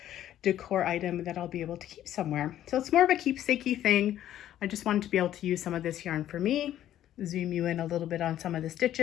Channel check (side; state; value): right; quieter; 12.1 dB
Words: decor item that I'll be able to keep somewhere. So it's more of a keepsakey thing. I just wanted to be able to use some of this yarn for me. Zoom you in a little bit on some of the